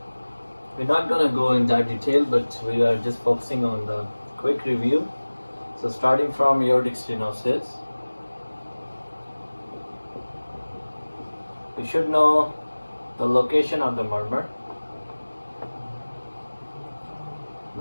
We're not going to go in that detail, but we are just focusing on the quick review. So starting from aortic stenosis, we should know the location of the murmur.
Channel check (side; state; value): both; inverted; correlation -1.00